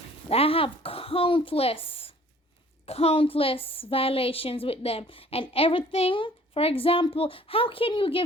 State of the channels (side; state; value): both; normal; correlation 0.54